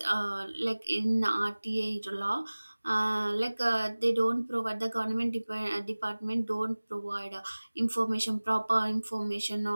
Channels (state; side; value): inverted; both; correlation -1.00